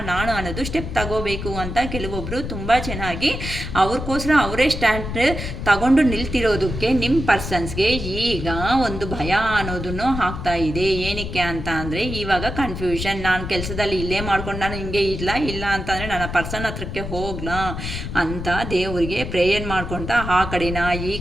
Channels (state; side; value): noise; left; rumble, 6 dB below the sound